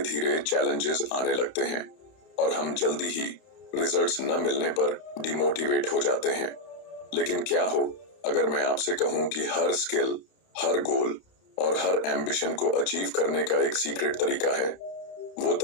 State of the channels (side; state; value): right; late; 31 ms